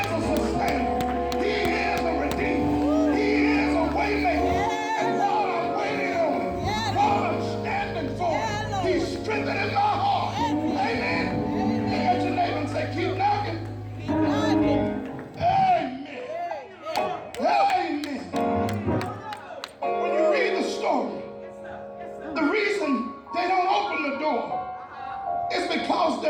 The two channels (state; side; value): identical; both; correlation 1.00